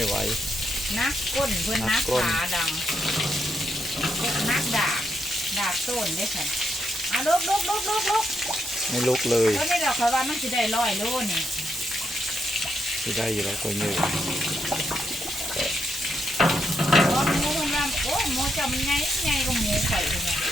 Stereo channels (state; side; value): normal; both; correlation 0.80